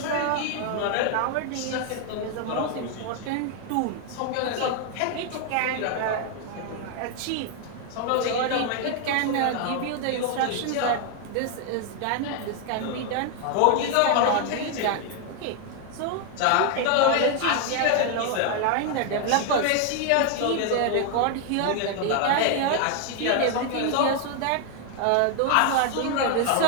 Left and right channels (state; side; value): different; both; correlation 0.00